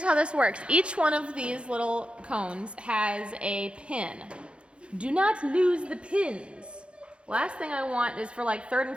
how this works. Each one of these little cones has a pin. Do not lose the pins. Last thing I want is for like 3rd and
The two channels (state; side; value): late; left; 0.058 ms